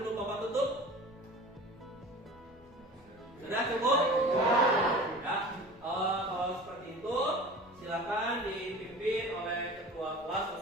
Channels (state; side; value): normal; both; correlation 0.38